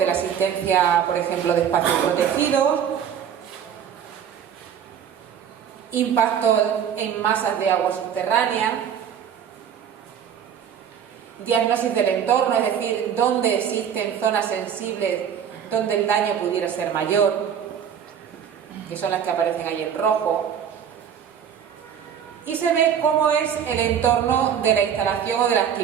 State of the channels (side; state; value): left; quieter; 8.5 dB